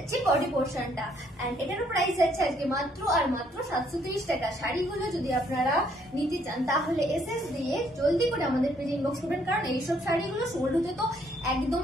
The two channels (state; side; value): normal; both; correlation 0.68